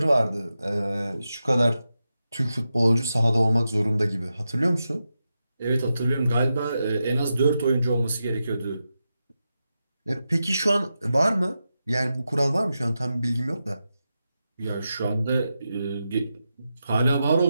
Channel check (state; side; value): inverted; both; correlation -0.89